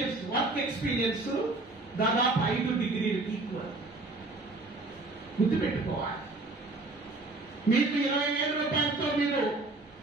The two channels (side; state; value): left; quieter; 3.2 dB